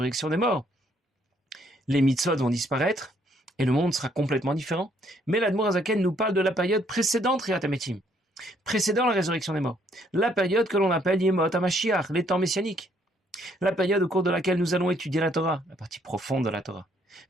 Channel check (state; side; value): normal; both; correlation 0.67